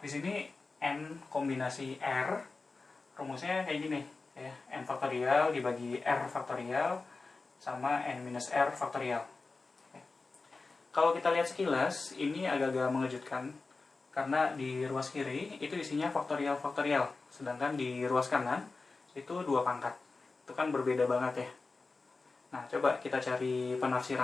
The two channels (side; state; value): right; quieter; 3.9 dB